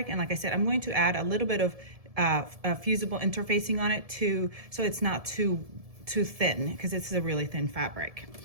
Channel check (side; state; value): left; late; 1.7 ms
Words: and like I said, I'm going to add a little bit of fusible interfacing on it so it's not too thin, because it's a really thin fabric.